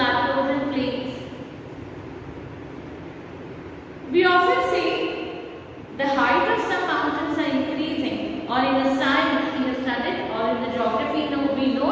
and plains. We often say the height of some mountains are increasing or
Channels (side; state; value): both; identical; correlation 1.00